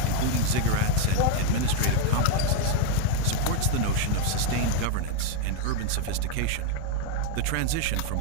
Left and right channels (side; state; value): both; different; correlation 0.00